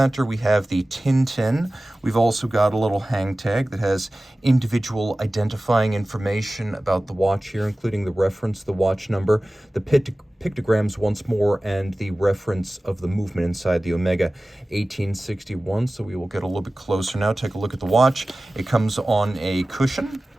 we have the Tintin. We've also got a little hang tag that has individual identifying information about the watch here, including the reference, the watch number, the pictograms once more, and the reference of the movement inside the Omega 1861. So we will get a little bit closer now. Take a look at the watch. It comes on a cushion.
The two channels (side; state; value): both; normal; correlation 0.97